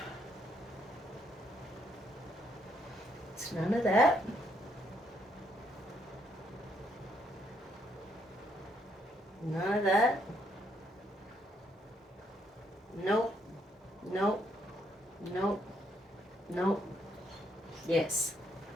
It's none of that. None of that. Nope. Nope. Nope. Nope. Yes.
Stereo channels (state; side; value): normal; both; correlation 0.73